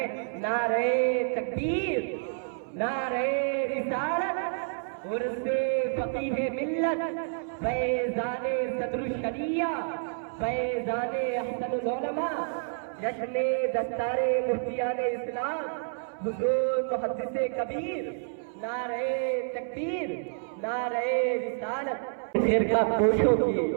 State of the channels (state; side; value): silent; left; 59 dB below the other